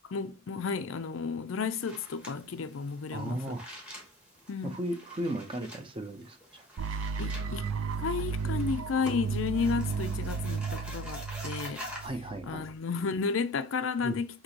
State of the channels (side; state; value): both; normal; correlation 0.41